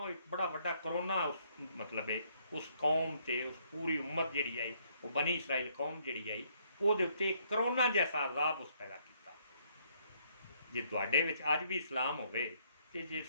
एक बड़ा वड्डा करोना उस मतलब है उस कौम से, उस पूरी उम्मत जी आई, वो बनी इसराइल कौम जी आई, वो करोना जैसा अजाब उस पैदा किया। जे तुहाडे विच अज भी इस्लाम होवे ते जे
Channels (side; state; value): both; inverted; correlation -0.69